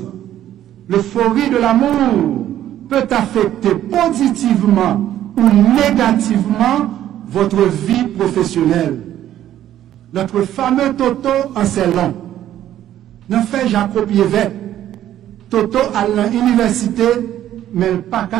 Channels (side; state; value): left; quieter; 12.0 dB